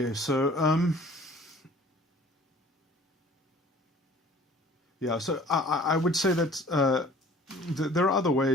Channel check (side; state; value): both; normal; correlation 0.49